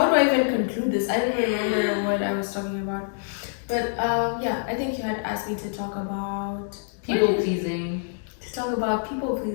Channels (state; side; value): silent; right; digital silence